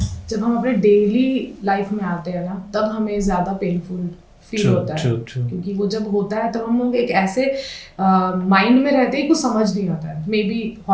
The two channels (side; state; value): both; identical; correlation 1.00